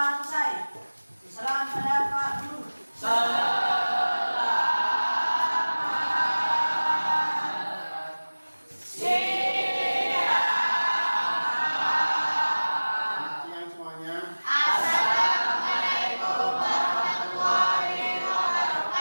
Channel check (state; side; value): inverted; both; correlation -1.00